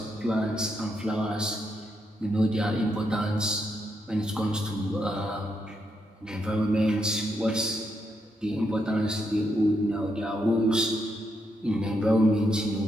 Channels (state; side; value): normal; both; correlation 0.80